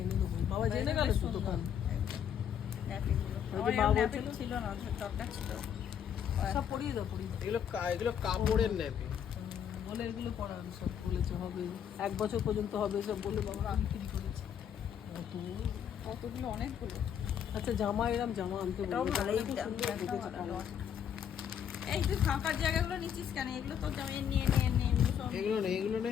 এনে দেবো। বাবা জেনে গেল তো দোকান। ছিল না, দরকার ছিল। সব পরিয়ে দাও, পরিয়ে দাও। এগুলো কাপড়ের নেবে বলে এগুলো পরান সব বলেছে হবে 1 বছর পর্যন্ত হবে সব বলে বাবা বিক্রি করেছে। কতগুলো, অনেকগুলো। আচ্ছা জামা এরম জামা আনতে বলবো। এই তুই ফাঁকার জায়গাগুলো নিচ্ছিস কেন? এগুলো তোর জামা নিয়ে এগুলো নেই, এগুলো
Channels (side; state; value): right; quieter; 8.7 dB